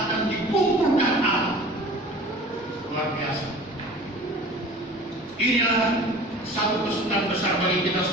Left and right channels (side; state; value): both; normal; correlation 0.42